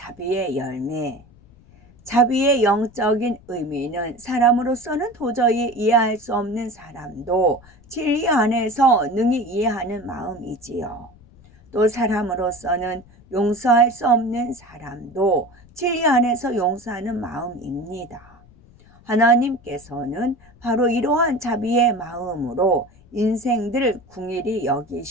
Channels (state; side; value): noise; left; rumble, 26 dB below the sound